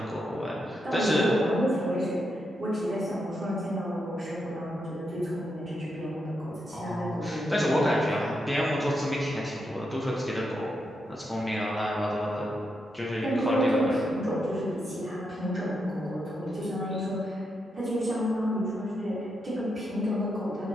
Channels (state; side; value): normal; both; correlation 0.83